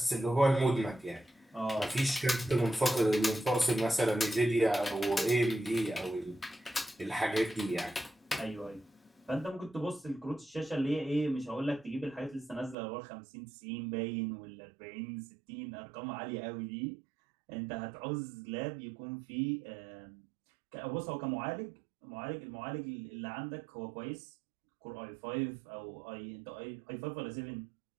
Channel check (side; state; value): left; drops out; at 12.8 s